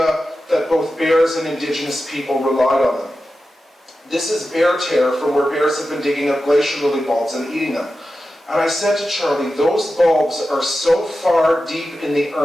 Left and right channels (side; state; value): both; normal; correlation 0.92